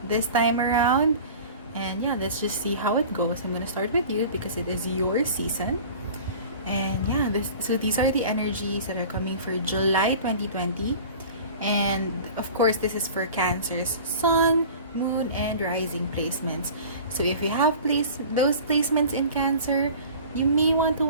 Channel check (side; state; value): both; inverted; correlation -0.41